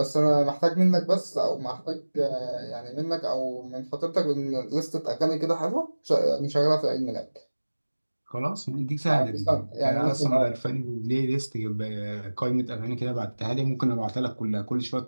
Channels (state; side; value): inverted; both; correlation -1.00